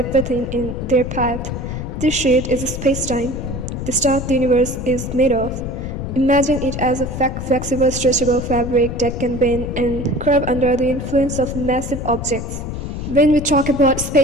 in their path. This sheet is space-time, the stuff the universe is made of. Imagine it as a flexible, stretchable fabric that can bend and curve under the influence of massive objects. When we talk about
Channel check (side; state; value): left; noise; rumble, 6 dB below the sound